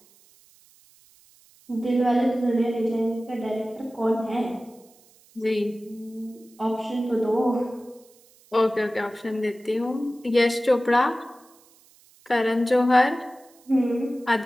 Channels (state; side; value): noise; right; hiss, 29 dB below the sound